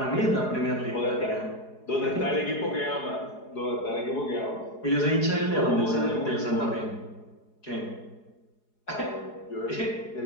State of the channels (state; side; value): late; right; 4.8 ms